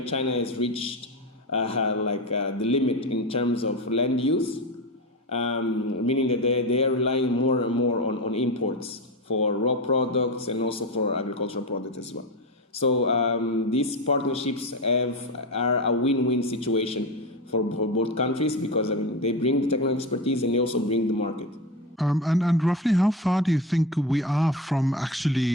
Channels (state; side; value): normal; both; correlation 0.20